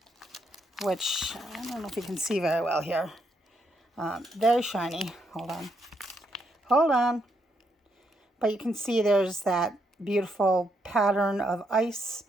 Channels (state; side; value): normal; both; correlation 0.77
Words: which I don't know if you can see very well here. Very shiny. Hold on. But you can see there's that beautiful pattern of ice,